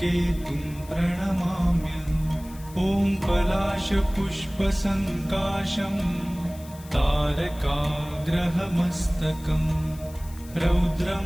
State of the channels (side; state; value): left; noise; hiss, 21 dB below the sound